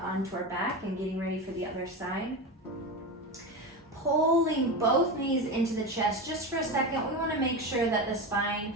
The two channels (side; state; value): both; normal; correlation 0.21